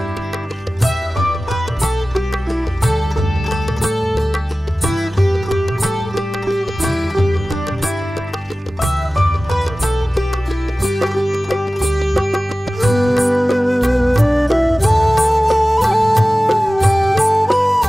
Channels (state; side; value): normal; both; correlation 0.97